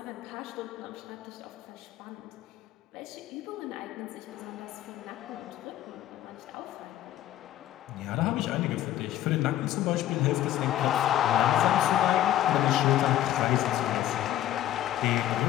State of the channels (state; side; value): quieter; right; 12.8 dB